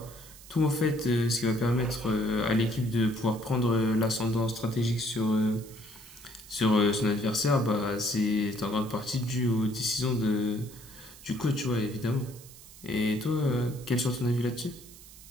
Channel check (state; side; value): noise; right; hiss, 19 dB below the sound